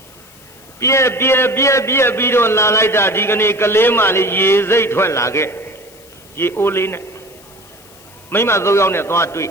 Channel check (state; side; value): noise; left; hiss, 25 dB below the sound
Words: ပြက်ပြီးတော့လာလိုက်တာဒီကနေ့ကလေးမလေးရေစိတ်ထွက်လာခဲ့ရေအိုးလေးနဲ့မိမ၃ယောက်နဲ့သွားတွေ့